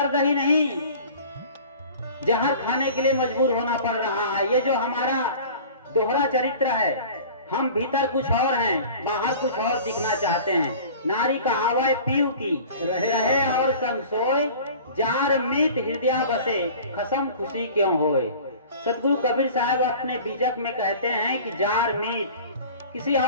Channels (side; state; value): both; inverted; correlation -0.43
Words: ही नहीं, जहर खाने के लिए मजबूर होना पड़ रहा है। ये जो हमारा दोहरा चरित्र है, हम भीतर कुछ और हैं, बाहर कुछ और दिखना चाहते हैं। नारी कहावत पीऊ की रहे और संग सोए, जार मीत हृदय बसे, खसम खुशी क्यों होए। सतगुरु कबीर साहब अपने बीजक में कहते हैं कि जार मीत, किसी